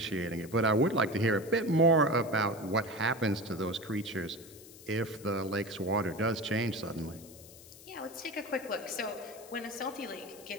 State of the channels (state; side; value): noise; left; hiss, 19 dB below the sound